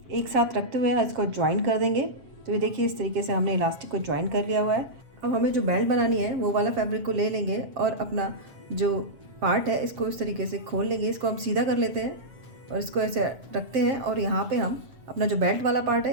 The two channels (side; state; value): left; late; 7.5 ms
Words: एक साथ रखते हुए इसको ज्वाइन कर देंगे। तो ये देखिए इस तरीके से हमने इलास्टिक को ज्वाइन कर लिया हुआ है। अब हमें जो बेल्ट बनानी है वो वाला फैब्रिक को ले लेंगे और अपना जो पार्ट है इसको इस तरीके से खोल लेंगे। इसको हम सीधा कर लेते हैं और इसको ऐसे रखते हैं और यहाँ पे हम अपना जो बेल्ट वाला पार्ट